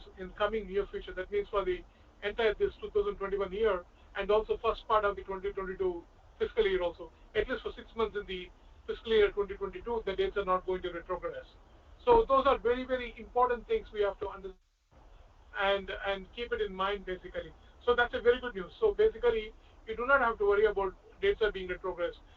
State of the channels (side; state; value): both; identical; correlation 1.00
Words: in coming near future. That means for the entire this 2021 year and also first part of the 2022 fiscal year also. At least for 6 months in the fiscal year 2022, the dates are not going to retrogress. So those are very, very important things we have to understand and keep it in mind basically. So that's a very good news. So basically, you do not have to worry about dates are being retrogressed.